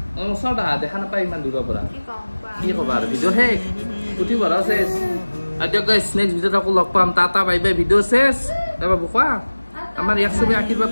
ওচৰত আহা দেখা নাপায় ইমান দূৰৰ পৰা কি ক'বা আৰু ভিডিঅ' শেষ পুথি ভৰা চেছ আৰু দিয়ক গাইছ নেক্সট ভিডিঅ'ত আকৌ লগ পাম টাটা বাই বাই ভিডিঅ' চেছ তাৰপৰা কোৱা আমাৰ ইয়াক চবে আশীৰ্বাদ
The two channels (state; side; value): inverted; both; correlation -1.00